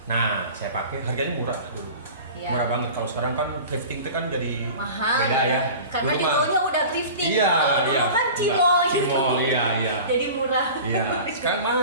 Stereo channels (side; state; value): both; inverted; correlation -0.38